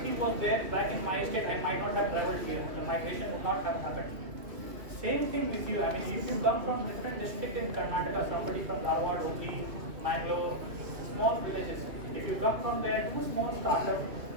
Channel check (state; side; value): late; left; 2.7 ms